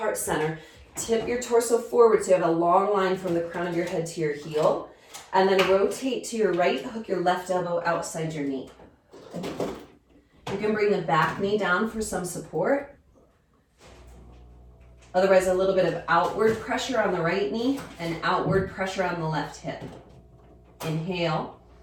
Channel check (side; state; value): both; identical; correlation 1.00